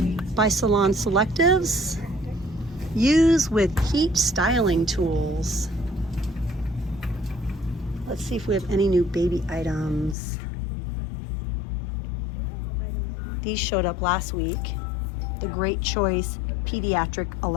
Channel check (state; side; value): drops out; right; at 10.2 s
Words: by Salon Selectives. Use with heat styling tools. Let's see if we have any new baby items. These showed up last week. The Great Choice Pediatric